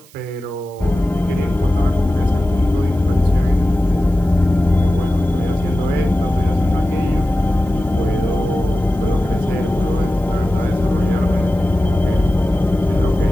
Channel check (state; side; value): noise; right; hiss, 26 dB below the sound